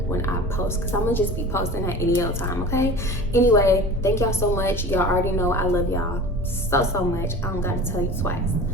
when I post, because I'm gonna just be posting at any old time, okay? Anyway, thank y'all so much. Y'all already know I love y'all so much. I don't gotta tell you twice.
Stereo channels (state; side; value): normal; both; correlation 0.37